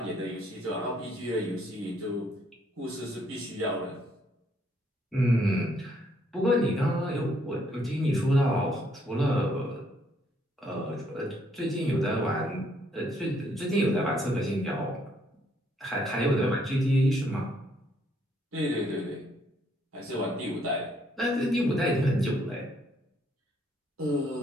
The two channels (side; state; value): both; normal; correlation 0.69